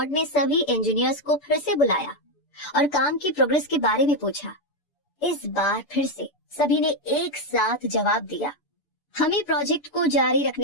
ने सभी इंजीनियर्स को फिर से बुलाया और काम की प्रोग्रेस के बारे में पूछा। इस बार फिर से सभी ने एक साथ जवाब दिया, हमें प्रोजेक्ट को जारी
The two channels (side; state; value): right; late; 6.9 ms